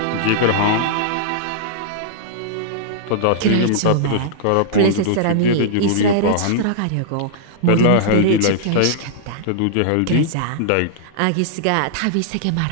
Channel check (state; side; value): different; both; correlation -0.01